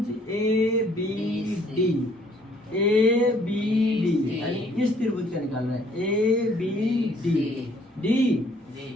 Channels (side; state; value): both; normal; correlation 0.62